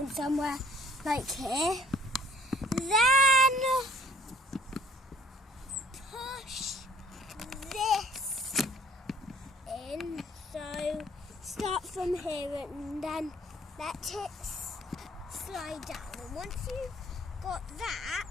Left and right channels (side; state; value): both; normal; correlation 0.57